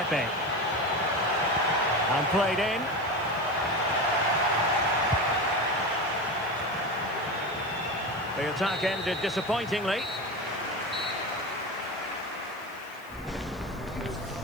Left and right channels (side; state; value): left; noise; hiss, 25 dB below the sound